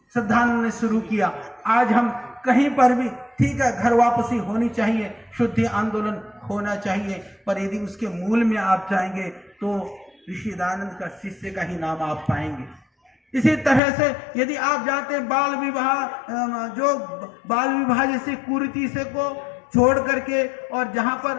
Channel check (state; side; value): drops out; right; at 13.8 s